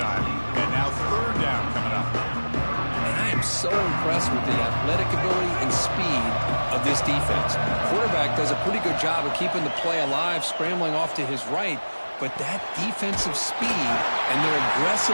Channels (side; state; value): both; inverted; correlation -1.00